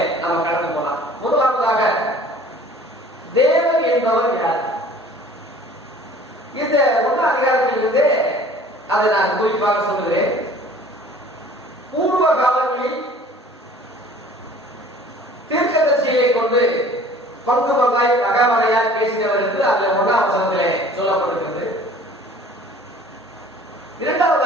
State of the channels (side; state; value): both; normal; correlation 0.49